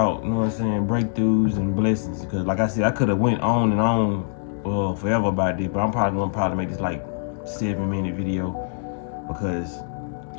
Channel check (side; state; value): right; silent; 63 dB below the other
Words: you know what I'm saying, breakthroughs and blessings. Because like I said, I could have went on and on forever about this, but I'm probably gonna make this like 7-minute video, because